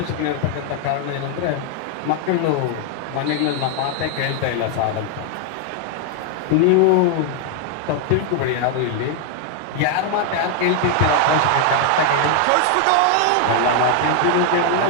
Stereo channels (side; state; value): both; different; correlation 0.00